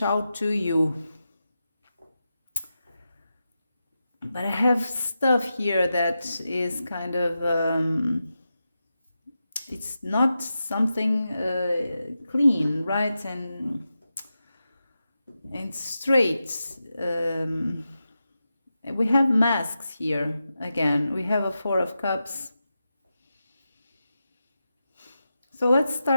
out to you. But I have stuff here that is kind of, it's not something clean, right? And straight. We have masks here again. We have a Four of Cups. So let's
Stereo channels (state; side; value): inverted; both; correlation -0.90